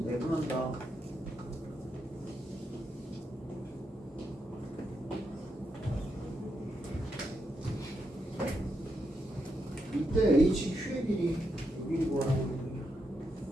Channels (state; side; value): normal; both; correlation 0.83